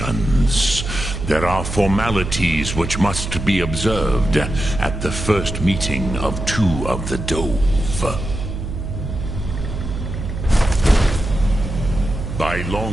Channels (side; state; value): right; noise; hum, 6 dB below the sound